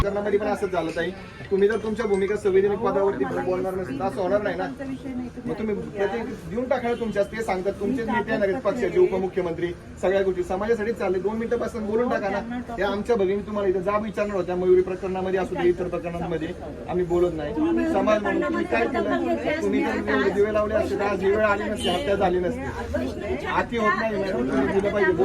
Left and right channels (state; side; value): identical; both; correlation 1.00